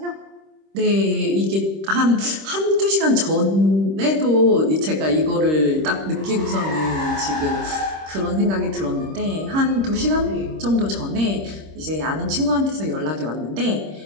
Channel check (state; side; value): late; left; 26 ms